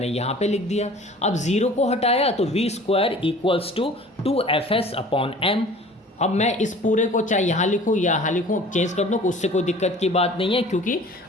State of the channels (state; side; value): normal; both; correlation 0.46